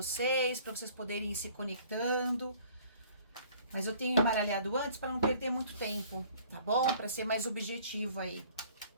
para vocês poderem ir se conectando. Mas eu tenho embaralhado antes para não perder muito tempo, tá bom? Para ser mais objetivo aí.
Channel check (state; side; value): inverted; both; correlation -0.54